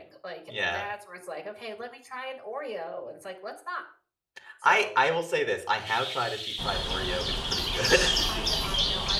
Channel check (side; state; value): both; identical; correlation 1.00